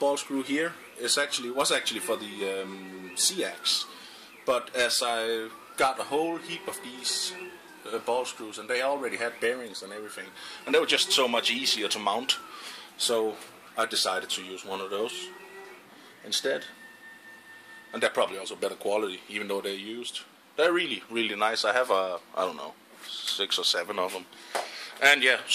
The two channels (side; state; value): both; identical; correlation 1.00